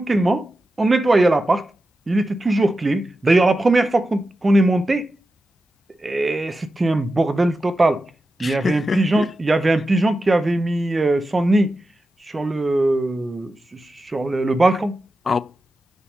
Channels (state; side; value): normal; both; correlation 0.91